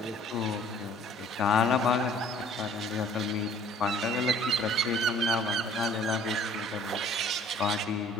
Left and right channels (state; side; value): normal; both; correlation 0.54